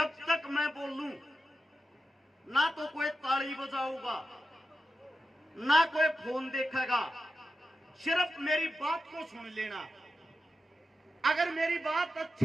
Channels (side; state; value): both; normal; correlation 0.90